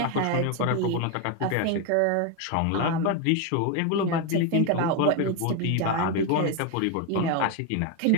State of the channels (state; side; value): different; both; correlation 0.02